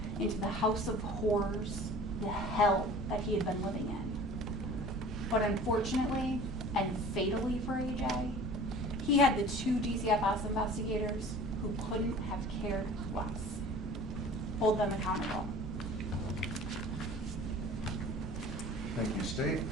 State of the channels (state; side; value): normal; both; correlation 0.44